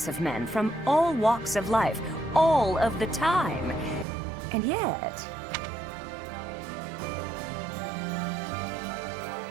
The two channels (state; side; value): drops out; left; at 4.0 s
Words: of men from all walks of life, all of the time. And yet...